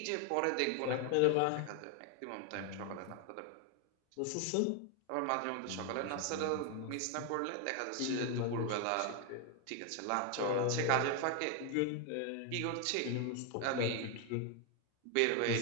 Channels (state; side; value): different; both; correlation 0.01